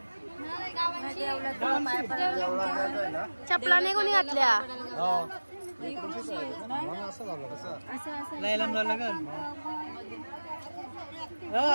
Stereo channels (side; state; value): both; inverted; correlation -1.00